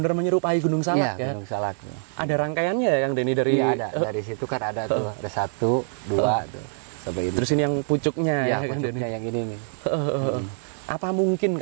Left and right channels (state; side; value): silent; left; 62 dB below the other